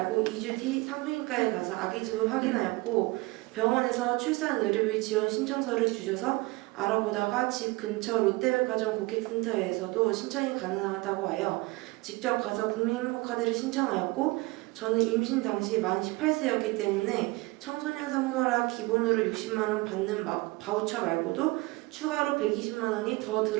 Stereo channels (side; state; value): left; quieter; 23.0 dB